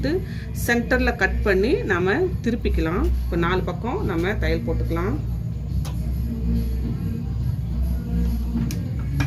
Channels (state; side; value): identical; both; correlation 1.00